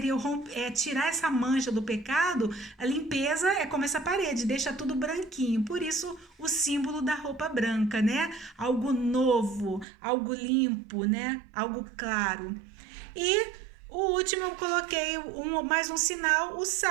tirar essa mancha do pecado, a limpeza é como essa parede, deixa tudo branquinho, por isso o símbolo da roupa branca, né, algo novo, algo limpo, né, algo claro. E o último eu coloquei mais um sinal, o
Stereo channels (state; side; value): drops out; left; at 9.9 s